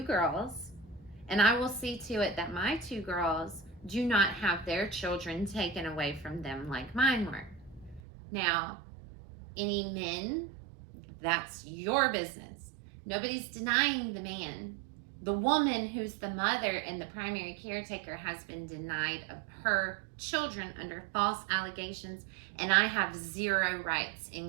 girls, and I will see to it that my 2 girls do not have their children taken away from them like mine were. Now, any men, that's your business. Nobody's denying the man. The woman who's the mother and the primary caretaker has been denied of her children under false allegations, and I have 0 rights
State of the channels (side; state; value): left; drops out; at 8.0 s